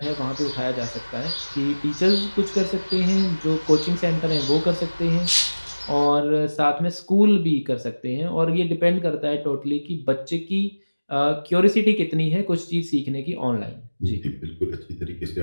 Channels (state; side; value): inverted; both; correlation -1.00